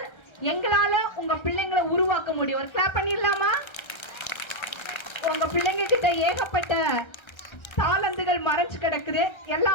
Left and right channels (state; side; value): late; right; 1.3 ms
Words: எங்களால உங்க பிள்ளைங்களை உருவாக்க முடியும். ஒரு கிளாப் பண்ணிடலாமா? உங்க பிள்ளைங்க கிட்ட ஏகப்பட்ட தாளந்துகள் மறைச்சு கிடக்குது,